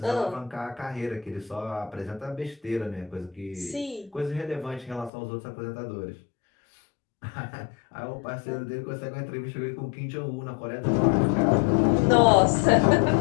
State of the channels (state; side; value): drops out; right; at 5.1 s